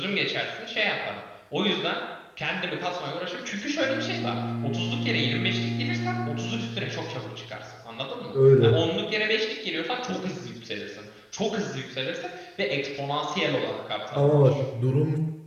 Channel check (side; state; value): both; identical; correlation 1.00